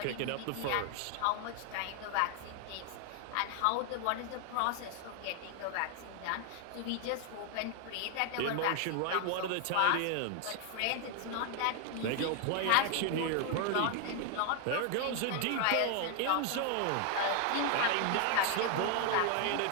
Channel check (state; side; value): different; both; correlation 0.00